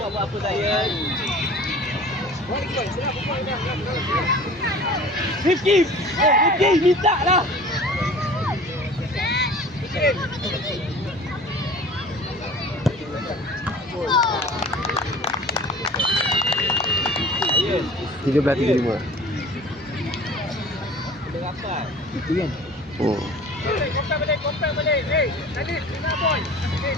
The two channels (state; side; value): normal; both; correlation 0.43